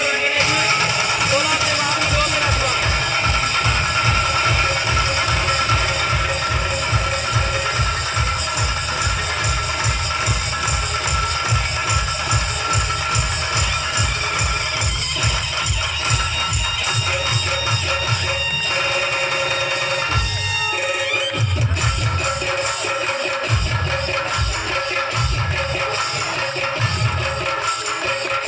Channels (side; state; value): both; identical; correlation 1.00